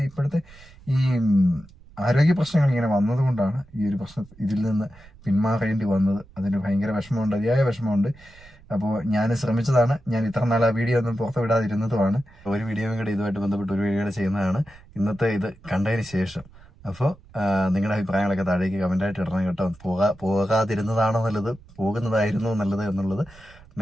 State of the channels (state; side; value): noise; right; rumble, 24 dB below the sound